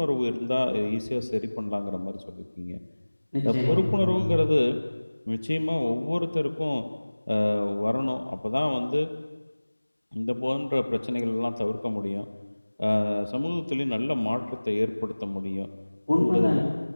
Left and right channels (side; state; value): both; inverted; correlation -1.00